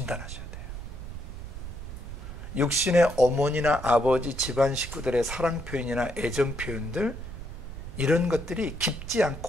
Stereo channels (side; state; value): right; noise; rumble, 9 dB below the sound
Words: 돼요. 육신의 어머니나 아버지, 집안 식구들의 사랑 표현이나 애정 표현들, 이런 것들이 깊지